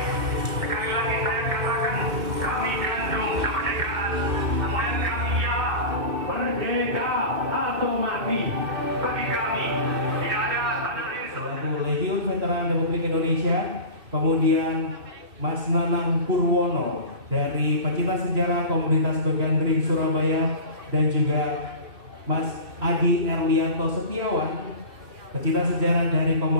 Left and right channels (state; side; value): late; left; 2.6 ms